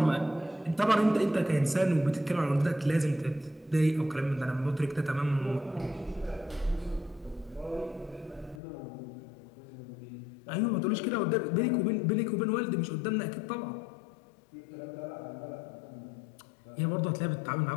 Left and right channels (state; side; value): drops out; right; at 8.6 s